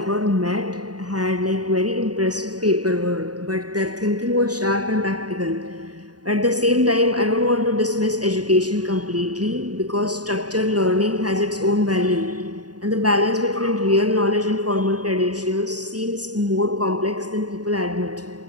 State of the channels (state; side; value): late; left; 0.68 ms